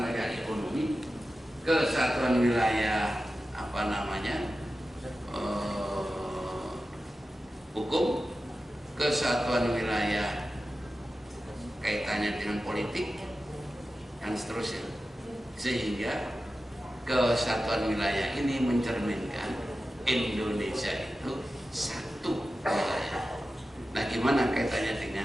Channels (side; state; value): both; normal; correlation 0.94